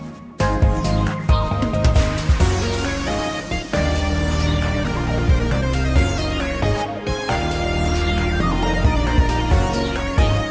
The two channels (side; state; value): both; identical; correlation 1.00